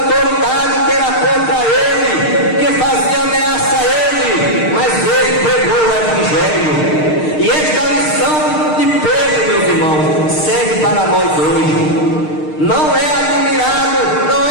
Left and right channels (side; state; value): right; late; 6.5 ms